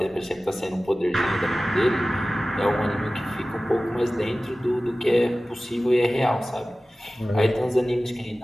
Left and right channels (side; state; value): both; normal; correlation 0.97